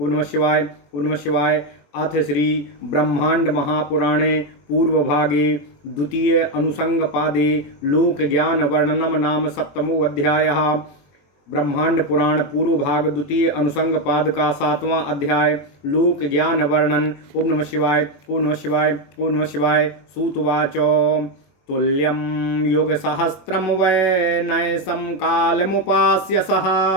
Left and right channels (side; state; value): right; late; 21 ms